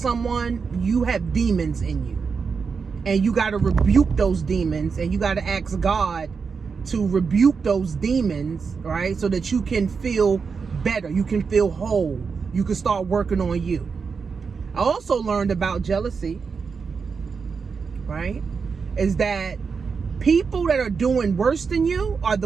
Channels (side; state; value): left; quieter; 5.4 dB